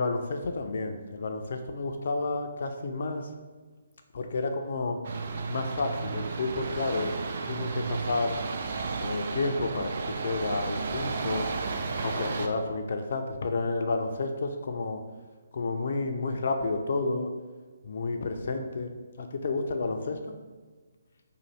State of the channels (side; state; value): both; inverted; correlation -0.78